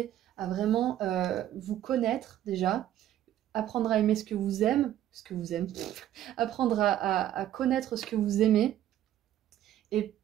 à vraiment vous connaître déjà, apprendre à aimer ce que vous aimez, apprendre à connaître ce que vous aimez. Et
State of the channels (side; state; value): left; quieter; 12.1 dB